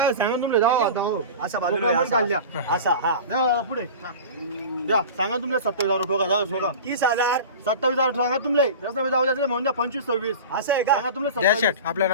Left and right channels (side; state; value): both; inverted; correlation -0.34